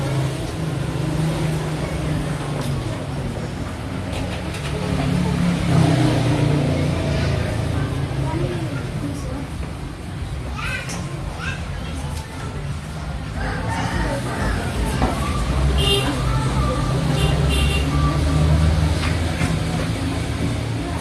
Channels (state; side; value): identical; both; correlation 1.00